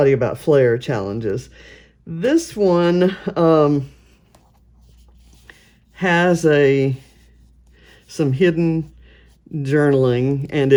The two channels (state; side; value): identical; both; correlation 1.00